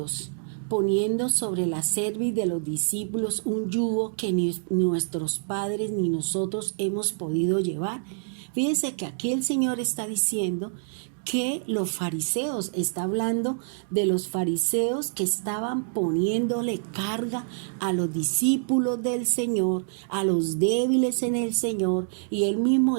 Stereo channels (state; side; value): silent; left; digital silence